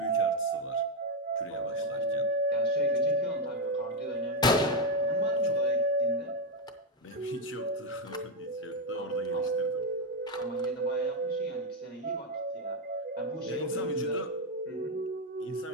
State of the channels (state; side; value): normal; both; correlation 0.05